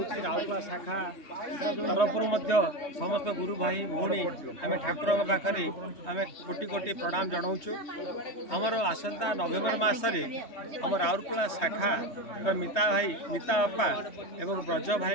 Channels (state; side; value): late; right; 3.2 ms